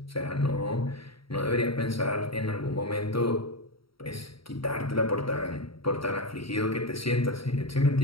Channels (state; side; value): late; right; 0.75 ms